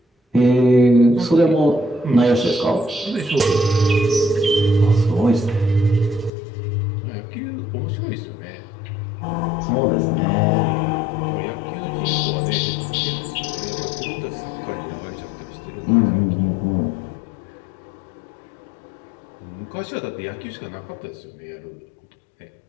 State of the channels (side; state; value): right; drops out; at 6.3 s